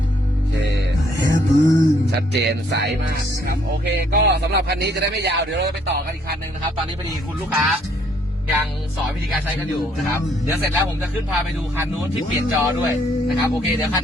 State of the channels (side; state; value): both; normal; correlation 0.66